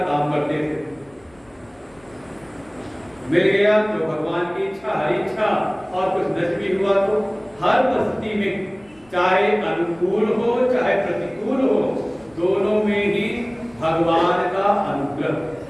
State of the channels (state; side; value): noise; left; rumble, 30 dB below the sound